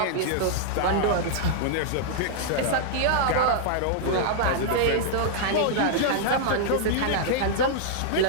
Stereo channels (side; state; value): both; different; correlation -0.01